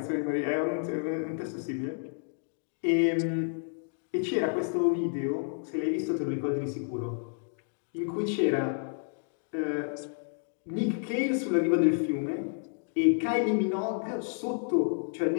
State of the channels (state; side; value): silent; right; digital silence